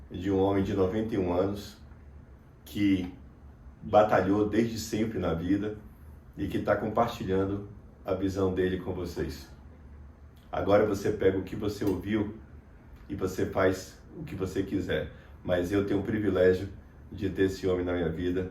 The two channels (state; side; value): identical; both; correlation 1.00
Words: de um homem de 91 anos que batalhou desde sempre na vida e que está compartilhando a visão dele com vocês. Agora você pega o que você ouviu e você faz o que você quiser. Mas eu tenho o privilégio de ter esse homem na minha vida,